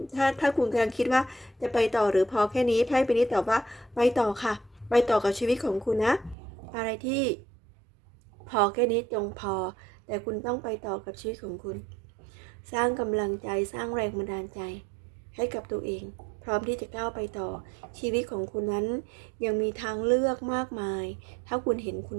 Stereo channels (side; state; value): left; drops out; at 6.4 s